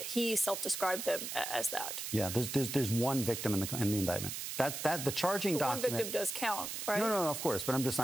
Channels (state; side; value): noise; right; hiss, 5 dB below the sound